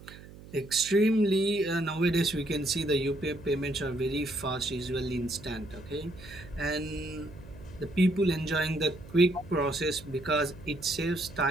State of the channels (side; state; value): right; noise; hum, 18 dB below the sound